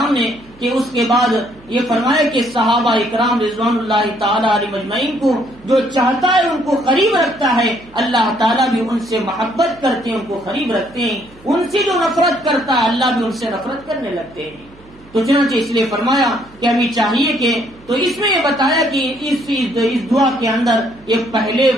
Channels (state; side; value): noise; right; hum, 25 dB below the sound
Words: نے کہ اس کے بعد یہ فرمایا کہ صحابہ اکرام رضوان اللہ تعالی علیہم اجمعین کو جو چاہتا ہے ان کو قریب رکھتا ہے، اللہ تعالیٰ بھی ان سے محبت کرتے ہیں، ان کو قریب رکھتے ہیں، ان سے جو نفرت کرتا ہے اللہ بھی ان سے نفرت کرنے لگتے ہیں۔ تو چنانچہ اس لیے فرمایا کہ ہمیں چاہیے کہ تو اس میں یہ بتایا کہ اس دعا کے اندر یہ پہلے